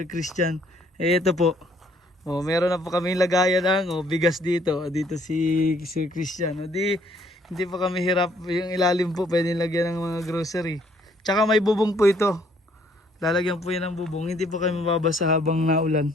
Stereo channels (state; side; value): normal; both; correlation 0.65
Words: Christian. Ito po, meron na po kami lagayan ng bigas dito si Sir Christian. Hindi po kami hirap, yung ilalim po pwede lagyan ng mga grocery. Tsaka may bubong po ito, lalagyan po yan ng bubong, hindi po kami mababasa habang